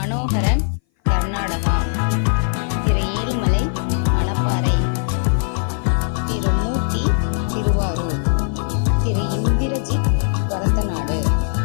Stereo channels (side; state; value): right; silent; 59 dB below the other